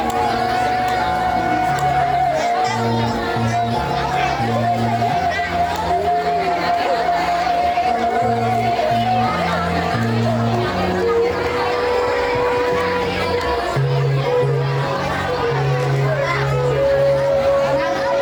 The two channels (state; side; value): identical; both; correlation 1.00